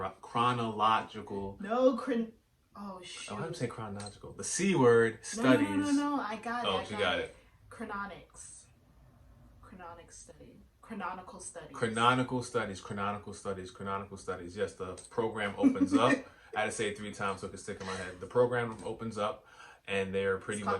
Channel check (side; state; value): both; identical; correlation 1.00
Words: no, oh Oh, how do you shoot. say chronological? The C word studies. No. I got it. Oh, I she got got it. it. Chrononics. Chronic study. Chronological studies. Canonical studies. Canonical studies. Canonical studies. Yes, the program opens up. I had to say it 3 times so it could stick in my head. The program opens up, and they're It's pretty called the